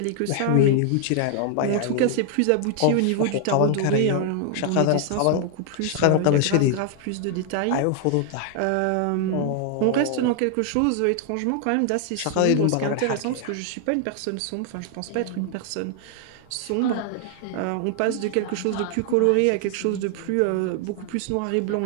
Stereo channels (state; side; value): different; both; correlation 0.00